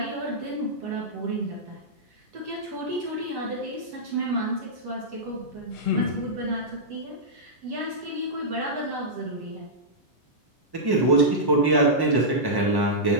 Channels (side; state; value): left; late; 1.1 ms